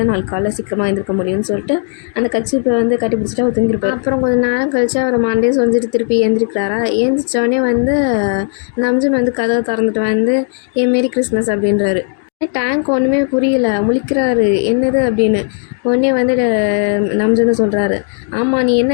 நாளைக்கு காலையில் சீக்கிரமாக எழுந்திருக்க முடியும்னு சொல்லிட்டு அந்த கட்சிப்பை வந்து கட்டி பிடிச்சிட்டு அவர் தூங்கிருப்பார். அப்புறம் கொஞ்சம் நேரம் கழிச்சு அவர் மண்டே சொல்லிட்டு திருப்பி எழுந்திரிக்கிறாரா. எழுந்திரிச்சோடனே வந்து நம்ஜுன் வந்து கதவை திறந்துட்டு வந்து மாரி கிறிஸ்மஸ் அப்படின்றாரு. டேங்க் ஒன்றுமே புரியல, முழிக்கிறாரு என்னது அப்படின்னு. உடனே வந்து நம்ஜுன்னு சொல்கிறாரு, ஆமாம் நீ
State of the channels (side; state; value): right; silent; 57 dB below the other